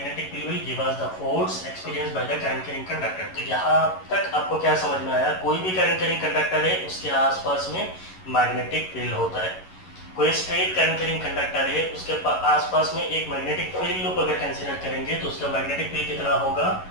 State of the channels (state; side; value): late; right; 11 ms